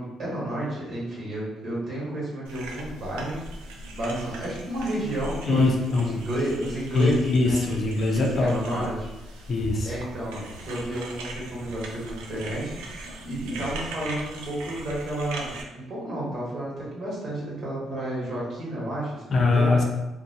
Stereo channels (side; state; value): both; normal; correlation 0.77